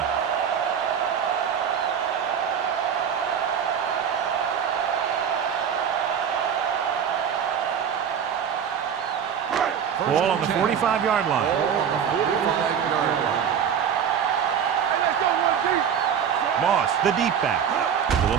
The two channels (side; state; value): left; quieter; 8.0 dB